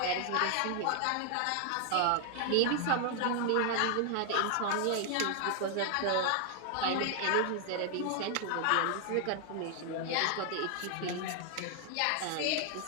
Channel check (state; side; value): different; both; correlation 0.00